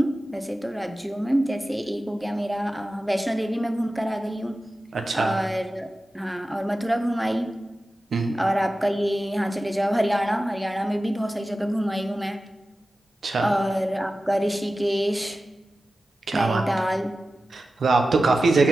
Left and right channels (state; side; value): normal; both; correlation 0.94